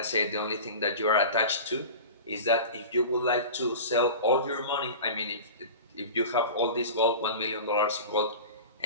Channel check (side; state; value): both; inverted; correlation -0.33